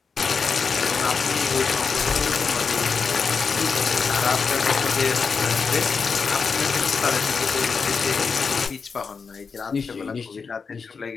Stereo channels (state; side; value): quieter; right; 5.3 dB